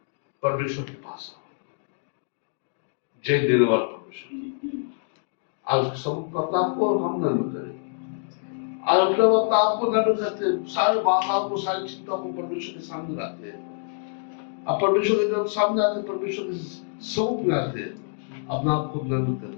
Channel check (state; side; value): silent; right; 61 dB below the other